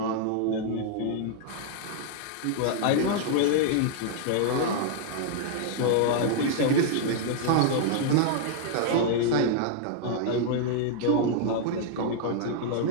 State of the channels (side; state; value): both; different; correlation -0.01